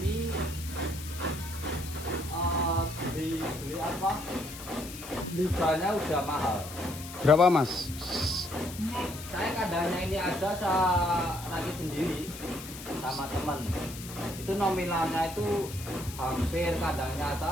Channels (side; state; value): left; noise; hiss, 12 dB below the sound